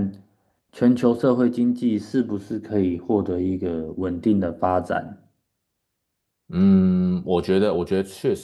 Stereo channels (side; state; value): both; identical; correlation 1.00